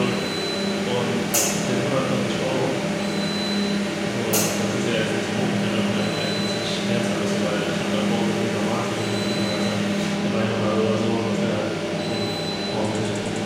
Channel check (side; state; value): both; identical; correlation 1.00